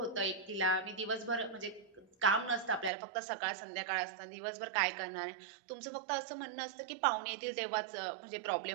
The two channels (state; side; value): drops out; left; at 2.9 s